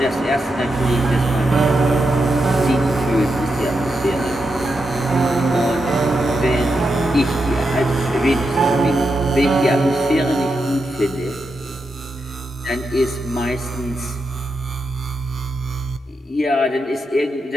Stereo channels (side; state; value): both; normal; correlation 0.85